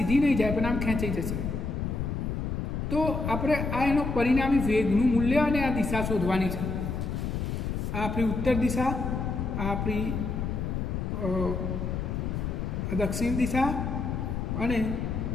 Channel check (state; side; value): noise; left; rumble, 2 dB below the sound